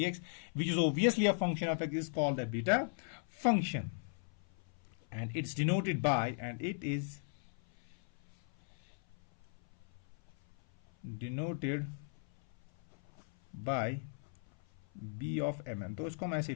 which is obviously a function of x, is called the beta function, and it's denoted by, and it is denoted by b of mn। तो इसको हम ऐसे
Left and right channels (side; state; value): right; silent; 53 dB below the other